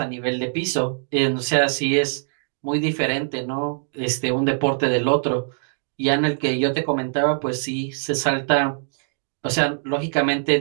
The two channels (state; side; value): silent; left; digital silence